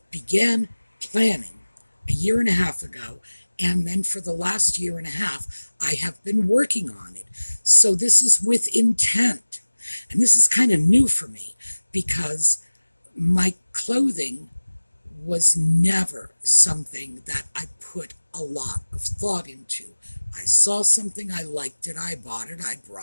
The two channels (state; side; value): inverted; both; correlation -1.00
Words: began planning a year and a half ago, and then for the last year and a half, I have been working on it. So this is with intent. And this is kind of new for me because my clothing was never something that I put a lot of thought into. I saw something, I liked it, I bought it, I